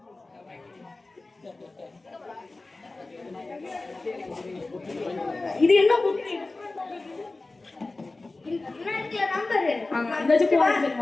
இது என்ன புக்? என்ன இருக்குல நம்பர்? அந்த ஜூஸ்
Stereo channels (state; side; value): quieter; right; 3.2 dB